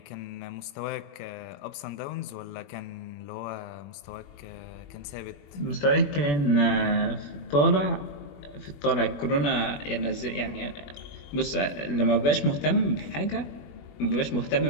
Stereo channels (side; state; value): right; late; 21 ms